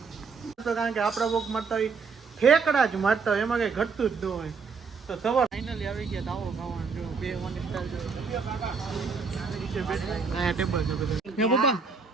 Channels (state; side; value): quieter; left; 5.1 dB